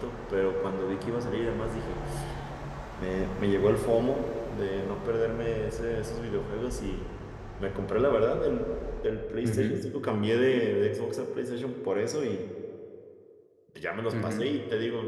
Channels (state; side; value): identical; both; correlation 1.00